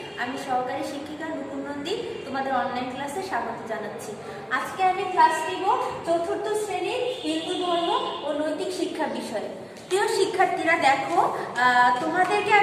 আমি সহকারী শিক্ষিকা নুপুর নন্দী তোমাদের অনলাইন ক্লাসে স্বাগত জানাচ্ছি। আজকে আমি ক্লাস নিব চতুর্থ শ্রেণীর হিন্দু ধর্ম ও নৈতিক শিক্ষা বিষয়ে। প্রিয় শিক্ষার্থীরা দেখো, তোমাদেরকে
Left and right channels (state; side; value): identical; both; correlation 1.00